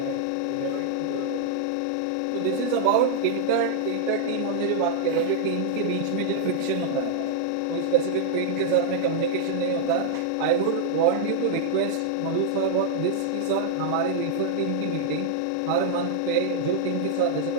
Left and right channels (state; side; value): different; both; correlation -0.01